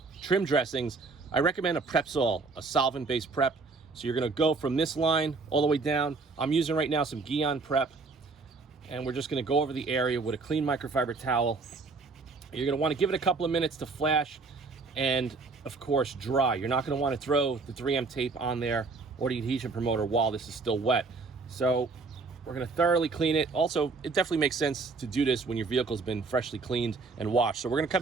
trim dressings, I recommend a Prepsol, a solvent-based prep. So you're going to go from this line all the way down. I'm using right now some Guion prep, and we're just going to go over the area with a clean microfiber towel. You're going to want to give it a couple of minutes to flash and, of course, dry. You're not going to want to throw the 3M tape on there or the adhesion promoter while this is still wet. So we're going to thoroughly clean it. Also, it definitely makes sense to do this when your vehicle's been freshly cleaned and washed. So we're going to come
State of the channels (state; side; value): quieter; left; 4.1 dB